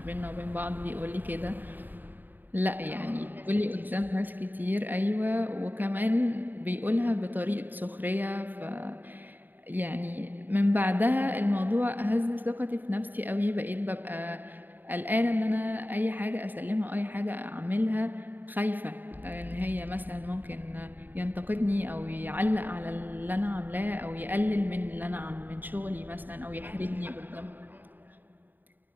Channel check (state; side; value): late; left; 0.089 ms